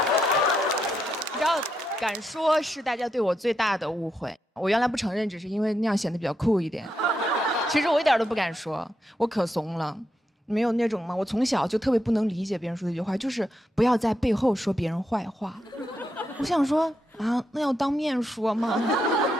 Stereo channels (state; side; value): normal; both; correlation 0.82